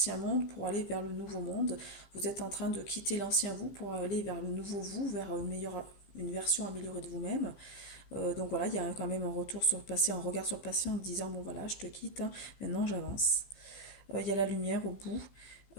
monde pour aller vers le nouveau monde. Vous êtes en train de quitter l'ancien vous pour aller vers le nouveau vous, vers une version améliorée de vous-même. Donc voilà, il y a quand même un retour sur le passé, un regard sur le passé en disant bon voilà, je te quitte, hein, maintenant j'avance. Il y a la lumière au bout.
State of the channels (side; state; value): right; late; 15 ms